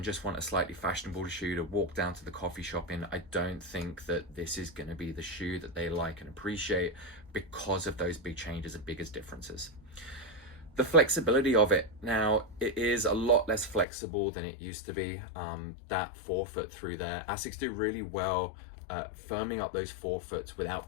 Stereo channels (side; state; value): right; drops out; at 13.9 s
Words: just want a slightly fashionable shoe to walk down to the coffee shop in. I don't think that this is going to be the shoe that they like and appreciate because of those big changes and biggest differences. The flexibility of it, now it is a lot less flexible than it used to be. That forefoot through there, Asics do really well firming up those forefoots without